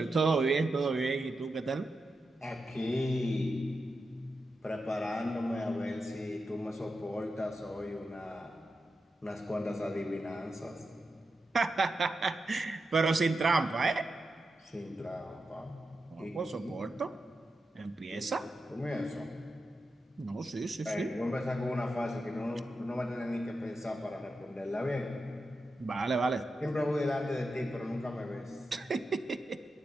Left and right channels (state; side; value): normal; both; correlation 0.89